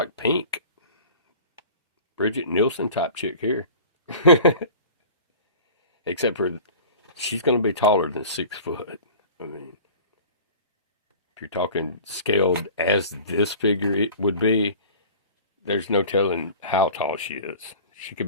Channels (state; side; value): inverted; both; correlation -0.41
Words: pink. Bridget Nielsen type chick here. Except for she's going to be taller than 6 foot. I mean, if you're talking scaled as this figure it would be, there's no telling how tall she is. She could